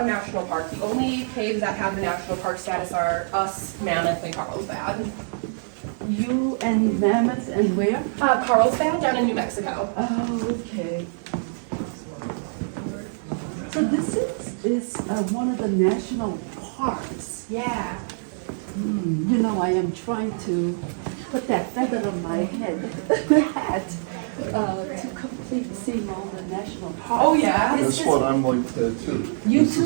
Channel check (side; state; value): left; silent; digital silence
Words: national park. The only caves that have the national park status are us, Mammoth, and Carlsbad. You and Mammoth and where? Carlsbad down in New Mexico. Oh, okay. So this is one of the national parks. Yeah. You know, I am trying to put that feather on my head, hat, to complete seeing all the national parks. Oh yeah. That's what I'm like too. You This